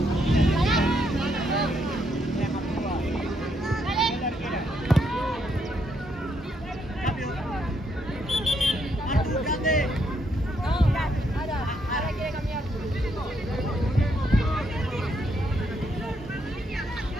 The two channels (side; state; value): both; normal; correlation 0.75